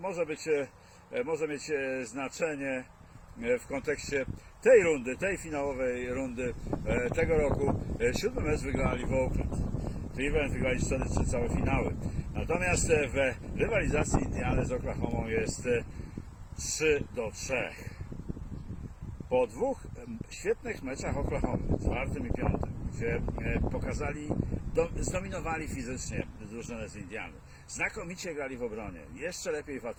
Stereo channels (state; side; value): identical; both; correlation 1.00